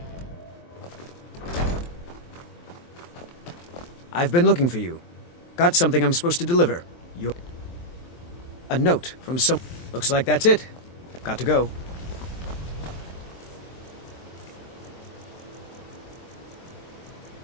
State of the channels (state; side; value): late; right; 23 ms